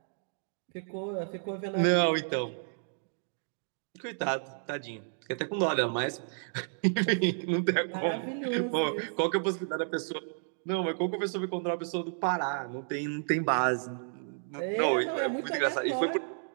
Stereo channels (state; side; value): silent; left; digital silence